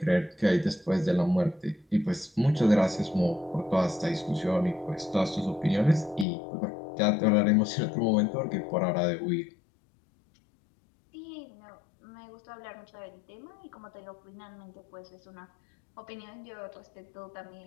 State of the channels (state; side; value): drops out; right; at 6.2 s